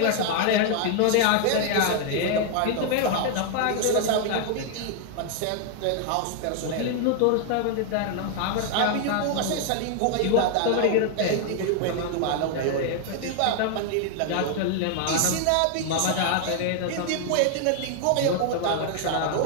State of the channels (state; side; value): different; both; correlation 0.00